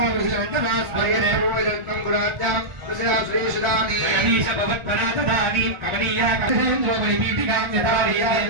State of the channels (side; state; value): left; late; 1.4 ms